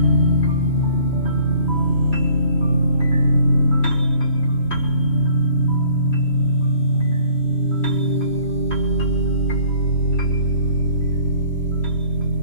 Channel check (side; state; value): right; late; 3.1 ms